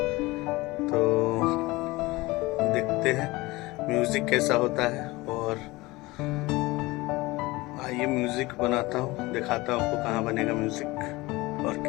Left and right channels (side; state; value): right; quieter; 21.3 dB